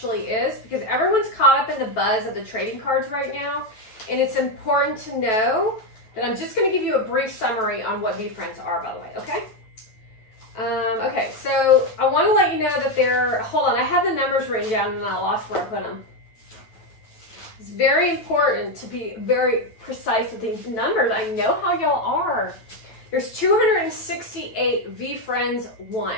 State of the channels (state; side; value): late; right; 9.1 ms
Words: is, because everyone's caught up in the buzz of the trading cards right now, and it's important to know that I'm just going to give you a brief summary on what Vee Friends are, by the way, okay? Okay, so I want to let you know that hold on, I had the numbers written down and I lost where I put them. It's very important to be very precise with these numbers. I know how y'all are. There's 268 Vee Friends 1.